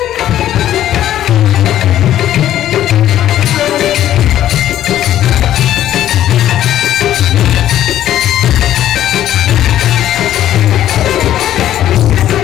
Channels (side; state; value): right; quieter; 12.2 dB